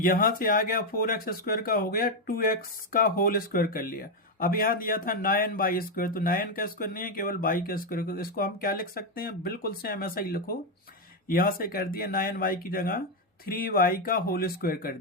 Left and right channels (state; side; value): normal; both; correlation 0.04